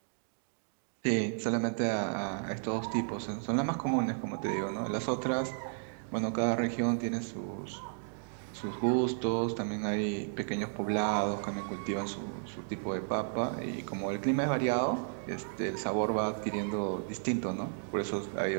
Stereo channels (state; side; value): silent; left; digital silence